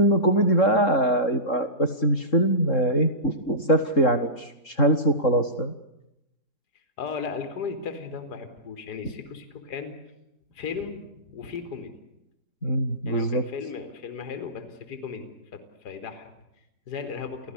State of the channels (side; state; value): right; late; 3.7 ms